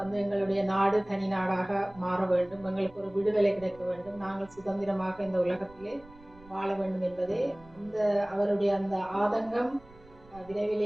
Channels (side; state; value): right; noise; rumble, 24 dB below the sound